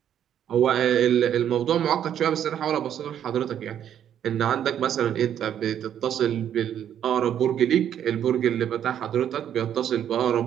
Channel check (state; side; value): quieter; left; 9.8 dB